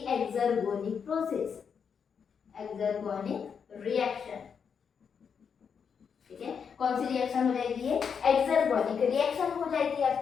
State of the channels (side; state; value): right; quieter; 6.7 dB